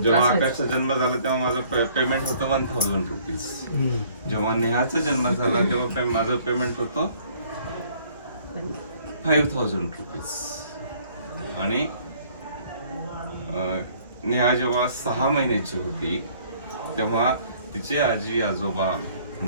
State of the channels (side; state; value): both; inverted; correlation -0.59